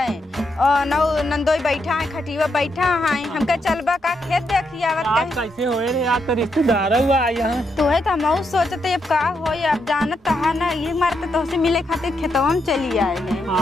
और नौ नंदोई बैठा है खटीवा बैठा है हमका चलबा का खेत देखी आवत आज कहीं कैसे होए रे आज तो रिश्तेदार हुआ यहाँ तो है तो हम सोचते अब का हो अब जानत है ना ये मारते तो से मिले खातिर खेतवा में चली आए हैं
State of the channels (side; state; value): both; normal; correlation 0.81